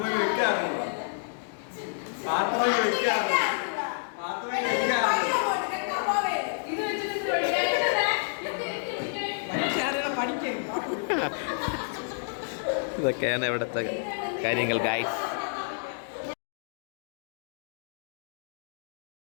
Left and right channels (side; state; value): right; silent; digital silence